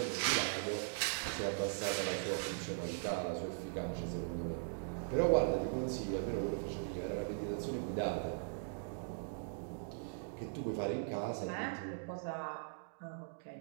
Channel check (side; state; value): left; silent; digital silence